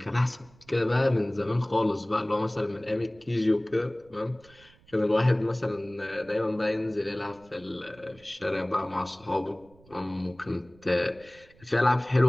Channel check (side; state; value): right; noise; rumble, 27 dB below the sound